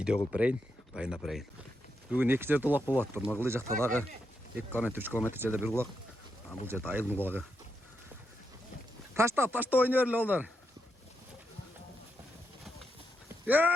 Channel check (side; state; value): both; normal; correlation 0.83